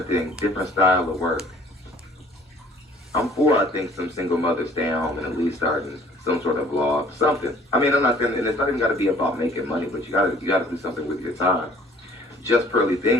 thing, different style of work. I'm for, I think, some single mothers staying home and at least starting some sort of vlog, something. I mean, I'm not gonna, and it's not even got to be about making money, but you gotta do something with your time. Just Pearly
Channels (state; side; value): normal; both; correlation 0.55